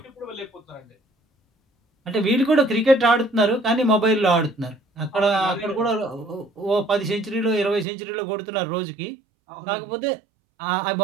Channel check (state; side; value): drops out; left; at 7.9 s